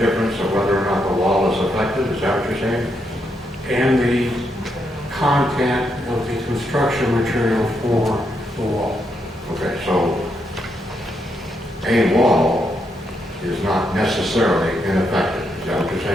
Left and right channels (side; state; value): both; normal; correlation 0.80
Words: of whether or not the wall is affected? Is that what you're saying? And the content of the construction material for the wall. Okay, so a wall is not necessarily ineffective. Is that what you're